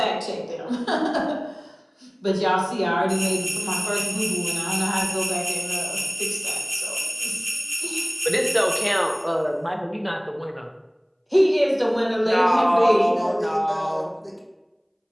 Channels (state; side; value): identical; both; correlation 1.00